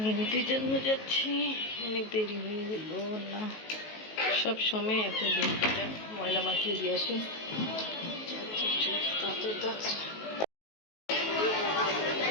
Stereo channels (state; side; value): late; right; 19 ms